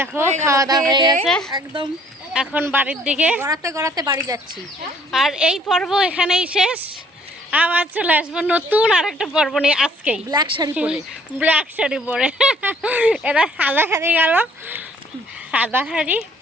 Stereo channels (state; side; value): normal; both; correlation 0.60